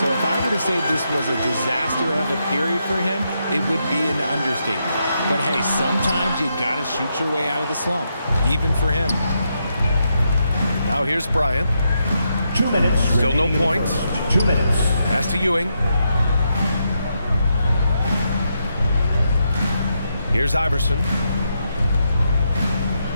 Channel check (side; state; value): both; inverted; correlation -0.82